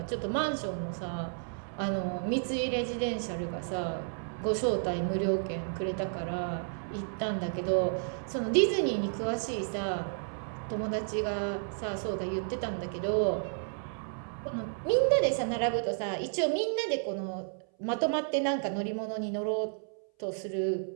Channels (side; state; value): left; silent; 56 dB below the other